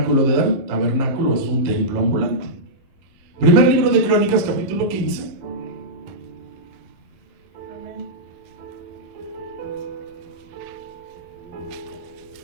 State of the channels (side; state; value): left; late; 11 ms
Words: de David. Tabernáculo es un templo ambulante. Primer libro de Crónicas, capítulo 15.